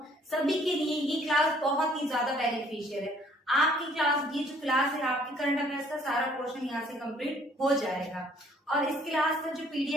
सभी के लिए ये क्लास बहुत ही ज्यादा बेनिफिशियल है। आपकी क्लास, ये जो क्लास है आपकी करंट अफेयर्स का सारा पोर्शन यहाँ से कंप्लीट हो जाएगा। और इस क्लास का जो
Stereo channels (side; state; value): both; normal; correlation 0.60